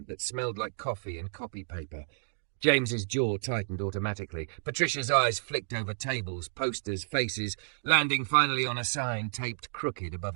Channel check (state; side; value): silent; left; digital silence